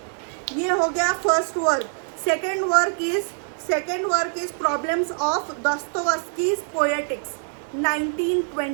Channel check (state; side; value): silent; left; 63 dB below the other